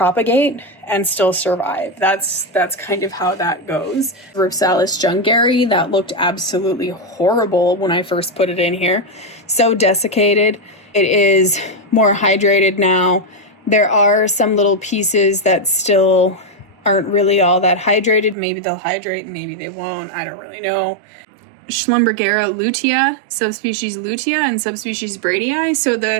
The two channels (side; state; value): left; drops out; at 18.4 s